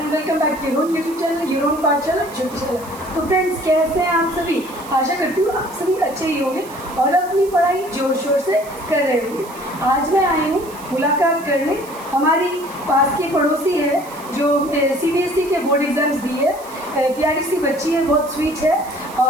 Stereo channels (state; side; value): noise; right; hiss, 19 dB below the sound